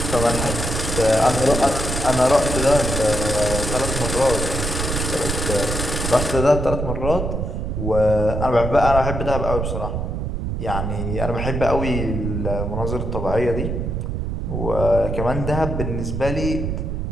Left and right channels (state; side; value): noise; right; rumble, 2 dB below the sound